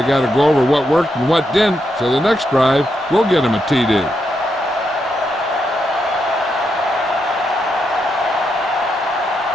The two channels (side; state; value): both; normal; correlation 0.82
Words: got to go over what worked and what didn't, so the next drive will get them a TD.